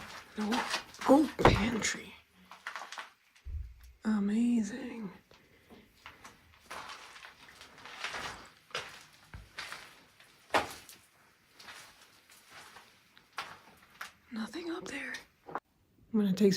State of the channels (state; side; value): identical; both; correlation 1.00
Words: Oh, pantry. Amazing. Nothing up there. I'm gonna take